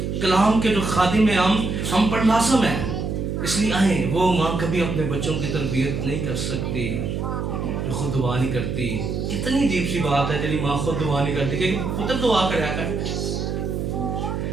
کلام کے جو خادم ہیں ہم پر لازم ہے. اس لیے آئیں, وہ ماں کبھی اپنے بچوں کی تربیت نہیں کر سکتی جو خود دعا نہیں کرتی. کتنی عجیب سی بات ہے جب ماں خود دعا نہیں کرتی کہ پتر دعا کریا کر.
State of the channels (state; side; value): noise; right; hum, 2 dB below the sound